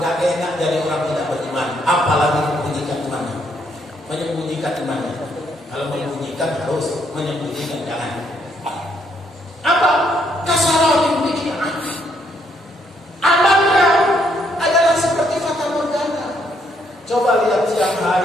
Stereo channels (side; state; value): both; normal; correlation 0.72